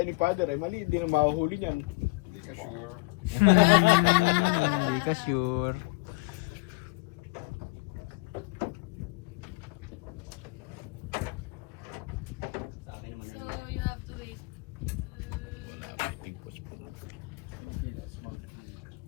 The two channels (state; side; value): quieter; right; 26.2 dB